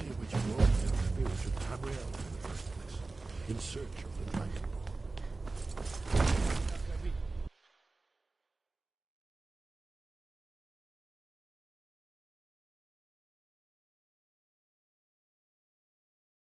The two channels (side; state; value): left; quieter; 3.5 dB